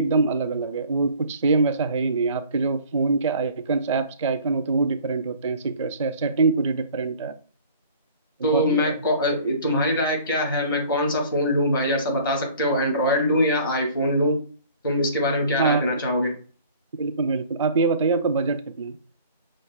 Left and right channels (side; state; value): both; inverted; correlation -0.49